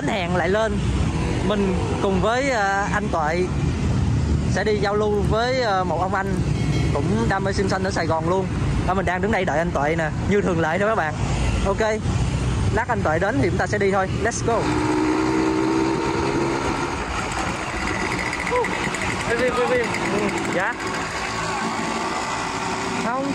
hẹn lại lên. Mình cùng với anh Tuệ sẽ đi giao lưu với một ông anh cũng đam mê sim xanh ở Sài Gòn luôn. Mình đang đứng đây đợi anh Tuệ nè, như thường lệ thôi các bạn. Ok, lát anh Tuệ đến thì chúng ta sẽ đi thôi. Let's go. Dạ. Không,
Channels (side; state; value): both; identical; correlation 1.00